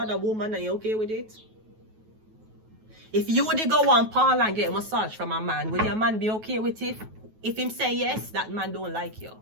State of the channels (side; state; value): left; late; 9.3 ms